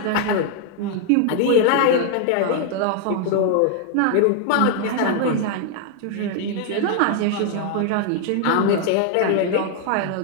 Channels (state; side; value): different; both; correlation 0.00